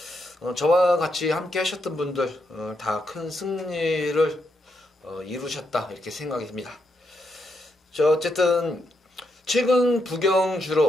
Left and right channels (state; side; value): normal; both; correlation 0.81